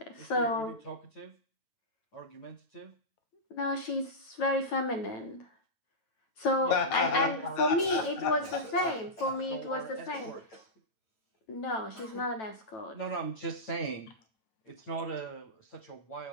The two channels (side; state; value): right; late; 9.1 ms